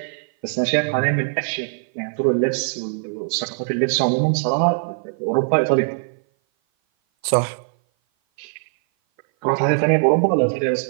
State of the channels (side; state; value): left; silent; 57 dB below the other